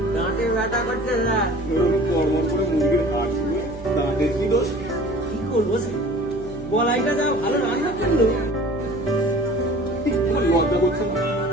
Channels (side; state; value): right; noise; hum, 16 dB below the sound